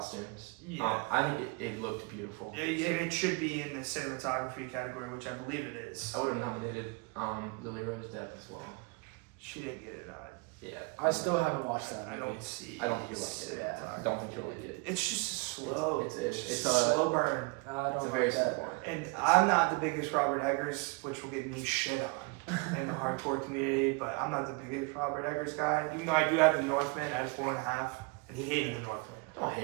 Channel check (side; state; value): left; quieter; 28.3 dB